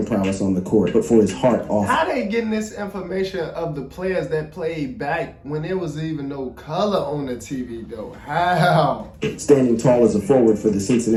prowess on the court, but for his heart off. How they getting this information of the players that played back when there was even no color on the TV though? How? Standing tall as a forward for the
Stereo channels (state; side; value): identical; both; correlation 1.00